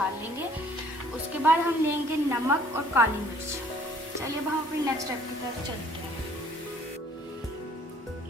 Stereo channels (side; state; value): both; normal; correlation 0.58